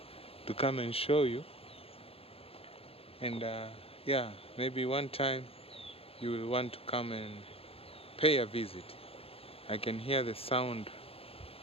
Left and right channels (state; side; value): late; right; 0.28 ms